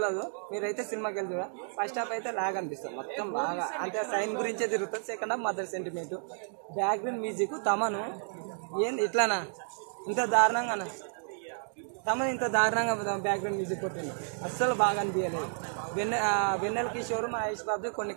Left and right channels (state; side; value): silent; left; digital silence